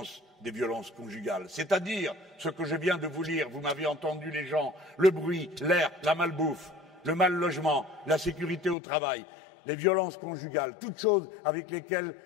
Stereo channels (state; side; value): drops out; right; at 8.8 s